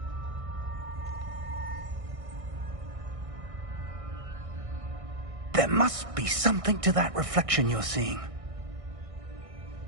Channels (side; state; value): left; late; 1.6 ms